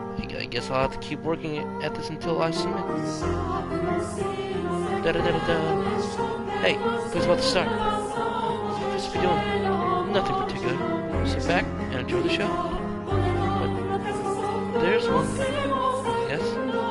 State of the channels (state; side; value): identical; both; correlation 1.00